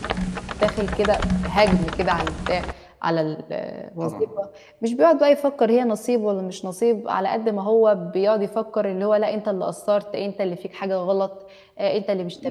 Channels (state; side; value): identical; both; correlation 1.00